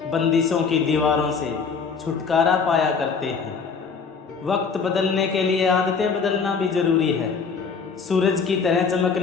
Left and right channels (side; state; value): right; quieter; 5.5 dB